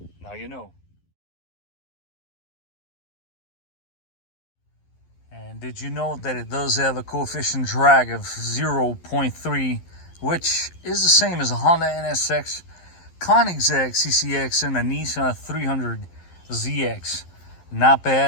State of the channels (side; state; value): right; late; 11 ms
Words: Now you know. And did you know that it does have a coefficient drag of 0.3, which is the same as a Honda NSX, Koenigsegg CCX, and a Nissan 300ZX? Not